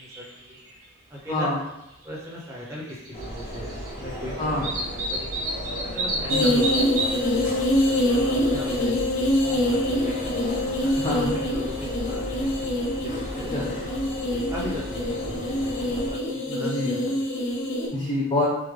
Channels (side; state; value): both; normal; correlation 0.46